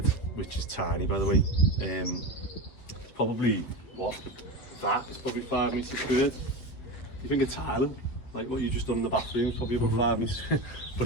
which is tiny by the way, probably that is probably 5 metres squared. You think a tile, like what you just done in the bathroom, is probably about 5 metres. But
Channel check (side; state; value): right; late; 8.2 ms